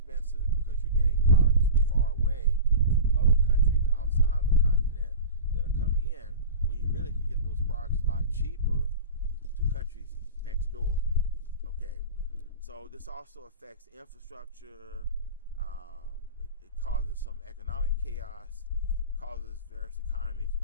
because you're getting products from far away from other countries outside the continent that are coming in, when you really can get those products a lot cheaper to countries next door. Okay, so this also affects infrastructure. It causes some economic chaos, causes various economies to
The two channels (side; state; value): both; inverted; correlation -0.31